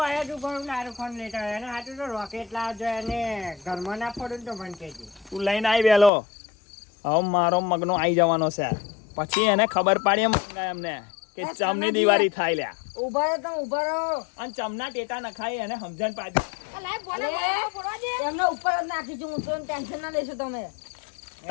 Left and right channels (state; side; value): drops out; right; at 6.1 s